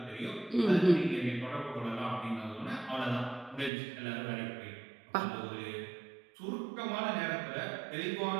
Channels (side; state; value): left; drops out; at 3.7 s